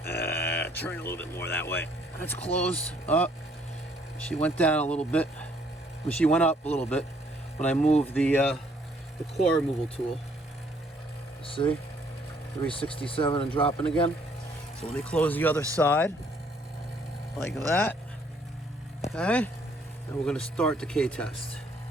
Turn a little bit more that way. That's closed. Up. She went down a little bit. Well, she went up a little bit when I moved the core removal tool. See? 367 and dropping again. So let me close the other side. Like that. Okay. And we're going to start the decay test.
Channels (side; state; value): both; normal; correlation 0.64